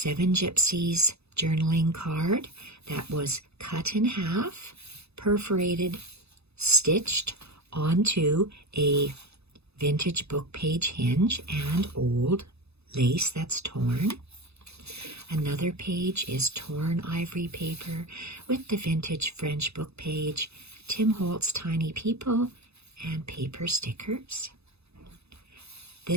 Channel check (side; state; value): left; late; 0.79 ms